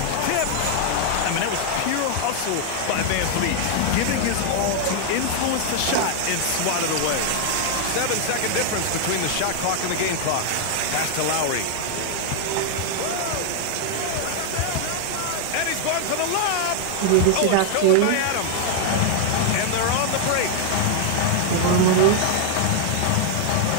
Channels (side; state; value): both; different; correlation 0.00